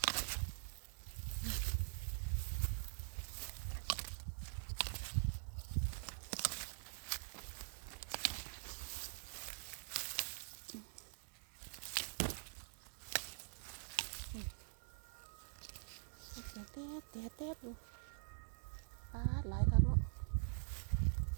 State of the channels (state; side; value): silent; left; digital silence